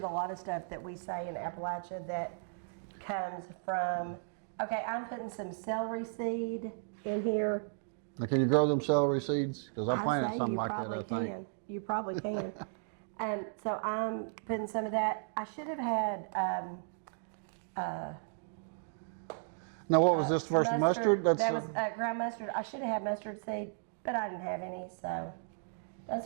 a lot of stuff that we say in Appalachia that comes from. Okay, I'm putting some celery seed in here. Now, can you grow them celery seeds? Because I I'd planted say something you like probably that, I think. can. You probably can. So I'm putting some of that. I should have had Now, what was this first mustard? That was ground mustard. I should have had mustard seed, but I didn't have any, so that's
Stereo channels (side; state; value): left; silent; digital silence